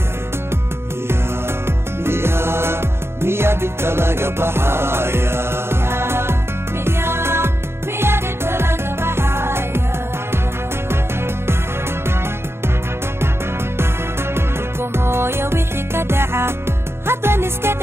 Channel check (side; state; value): left; late; 0.12 ms